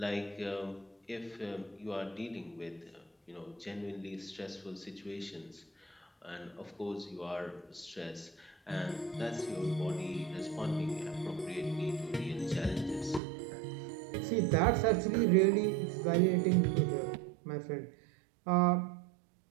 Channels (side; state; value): left; drops out; at 13.2 s